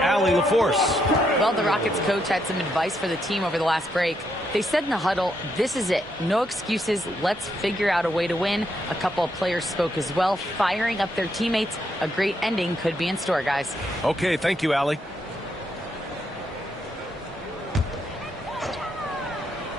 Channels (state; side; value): normal; both; correlation 0.78